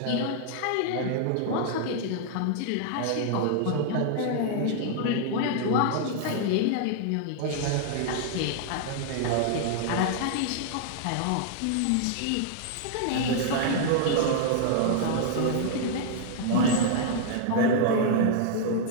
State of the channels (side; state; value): both; different; correlation -0.01